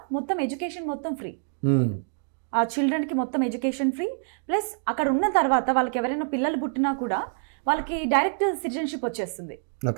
మొత్తం ఎడ్యుకేషన్ మొత్తం ఫ్రీ. ఆ చిల్డ్రన్కి మొత్తం ఎడ్యుకేషన్ ఫ్రీ. ప్లస్ అక్కడ ఉన్న తర్వాత వాళ్ళకి ఎవరైనా పిల్లలు పుట్టినా కూడా వాళ్ళకి డైరెక్ట్ సిటిజన్షిప్ వచ్చేస్తుంది.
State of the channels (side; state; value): left; silent; 61 dB below the other